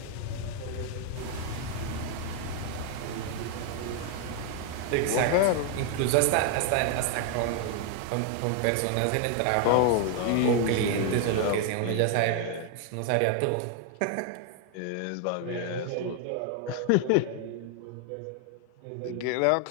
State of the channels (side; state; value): both; different; correlation 0.00